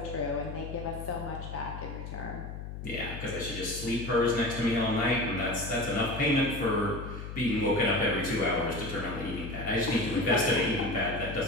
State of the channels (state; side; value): noise; left; hum, 8 dB below the sound